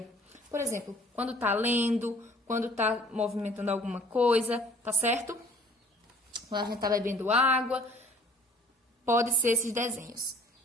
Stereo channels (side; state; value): both; normal; correlation 0.53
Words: Por exemplo, quando tá lendo, quando tá movimentando alguma coisa, tá certo? Quando a gente tá bebendo água, pode ser esses desenhos.